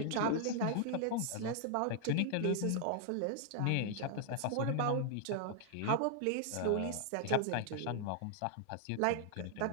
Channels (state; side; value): different; both; correlation -0.01